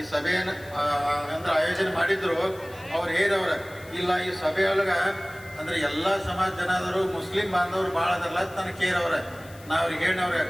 ಸಭೆಯನ್ನು ಅಂದ್ರೆ ಆಯೋಜನೆ ಮಾಡಿದ್ರು, ಅವ್ರು ಹೇರವ್ರ ಇಲ್ಲ ಈ ಸಭೆಯೊಳಗ ಅಂದ್ರೆ ಎಲ್ಲಾ ಸಮಾಜ ಜನಾದರು, ಮುಸ್ಲಿಂ ಬಾಂಧವರು ಭಾಳ ಅದಲ್ಲ ನನಗೆ ಕೇರವ್ರ. ನಾ ಅವ್ರಿಗೆ ಹೇಳವ್ರೆ,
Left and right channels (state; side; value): noise; left; hiss, 22 dB below the sound